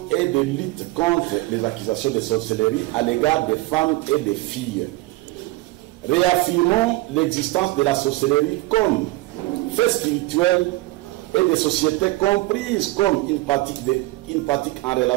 et de lutte contre les accusations de sorcellerie à l'égard des femmes et des filles. Réaffirmons l'existence de la sorcellerie comme fait spirituel et des sociétés comprises comme une pratique en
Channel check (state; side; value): quieter; left; 19.6 dB